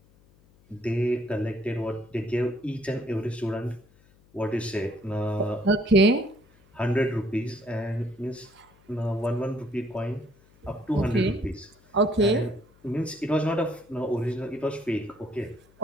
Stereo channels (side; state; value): left; noise; hum, 29 dB below the sound